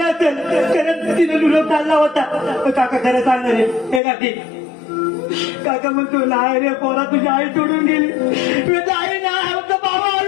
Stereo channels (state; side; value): drops out; right; at 4.0 s